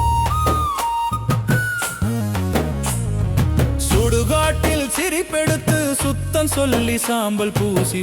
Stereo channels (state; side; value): identical; both; correlation 1.00